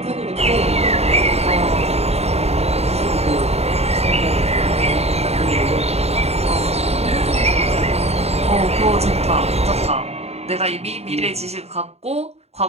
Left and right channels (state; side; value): late; left; 0.30 ms